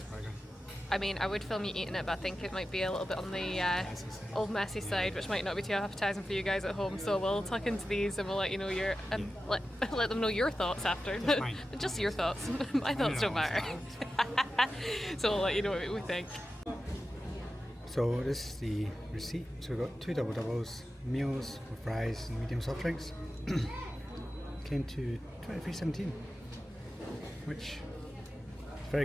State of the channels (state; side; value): normal; both; correlation 0.93